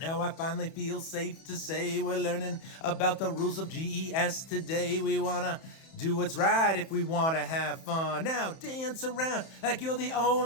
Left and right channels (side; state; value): right; late; 31 ms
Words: I finally feel safe to say we're learning about the rules of GES today. We want to do what's right if we want to have fun. Now dance around like you're the